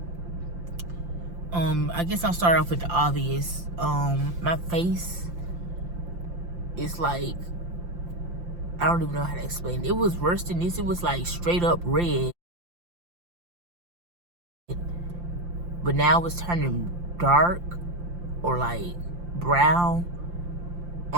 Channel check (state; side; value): late; left; 5.8 ms